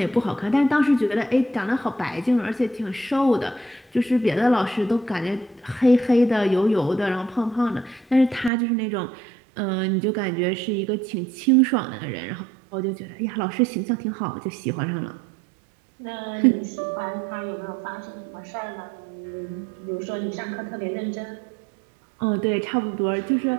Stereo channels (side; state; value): left; drops out; at 8.5 s